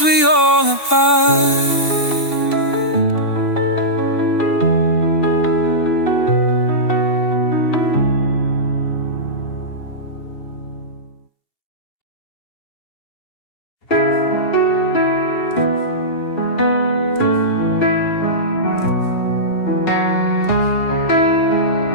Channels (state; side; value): late; right; 2.7 ms